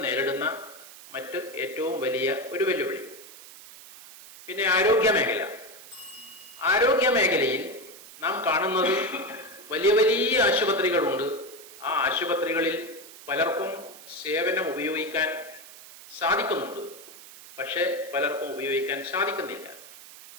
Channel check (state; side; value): noise; right; hiss, 18 dB below the sound